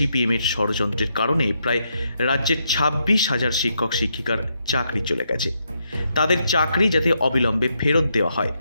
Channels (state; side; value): inverted; both; correlation -0.80